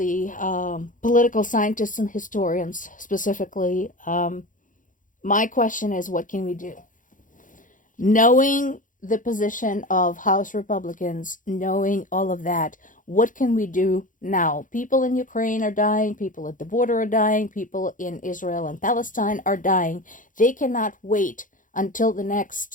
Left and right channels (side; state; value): right; late; 0.38 ms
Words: political scientists and historians specifically, my question is, what can we do? Knowing the position of House Republicans, knowing all of that, what can we do now? People in Ukraine are dying, people at the border are dying, people in Israel and Palestine are dying. They cannot wait until the